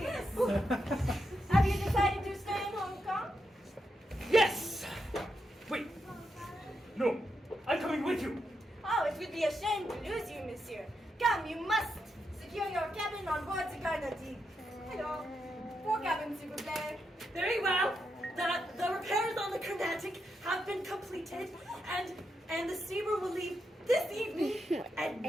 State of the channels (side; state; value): both; normal; correlation 0.84